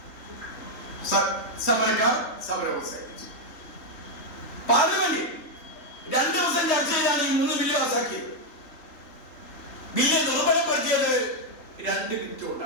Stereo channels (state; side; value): late; right; 3.4 ms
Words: സമരക്കാർ സമരം അവസാനിപ്പിച്ചു. പാർലമെന്റ് 2 ദിവസം ചർച്ച ചെയ്താണ് ഈ 3 ബില്ല് പാസാക്കിയത്. ബില്ല് ദുർബലപ്പെടുത്തിയത് 2 മിനിറ്റ്